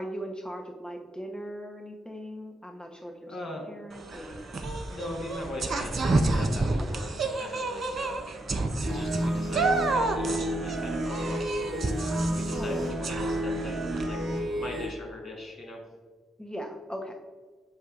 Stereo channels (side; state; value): both; normal; correlation 0.79